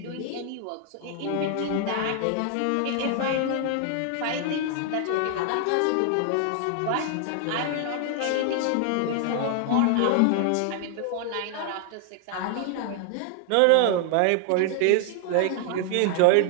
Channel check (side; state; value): both; different; correlation 0.00